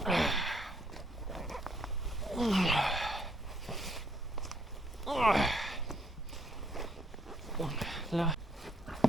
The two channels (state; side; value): normal; both; correlation 0.69